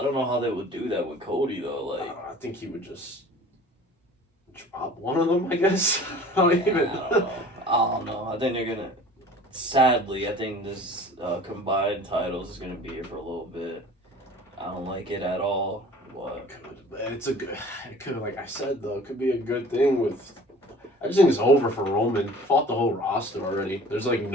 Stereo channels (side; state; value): both; normal; correlation 0.45